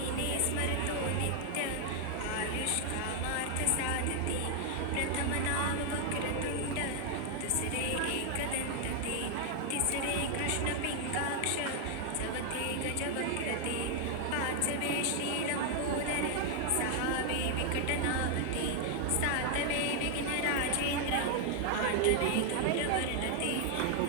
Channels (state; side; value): different; both; correlation 0.00